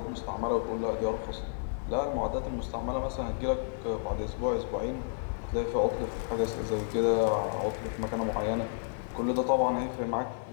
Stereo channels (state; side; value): silent; right; digital silence